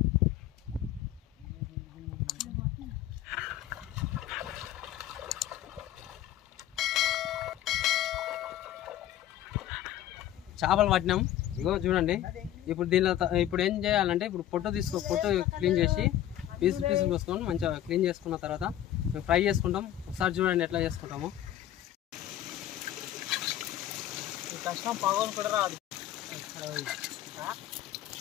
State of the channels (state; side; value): quieter; right; 12.3 dB